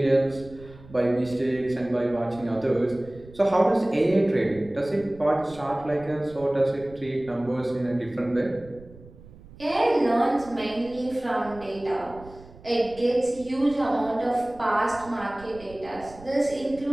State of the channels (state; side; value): noise; right; rumble, 20 dB below the sound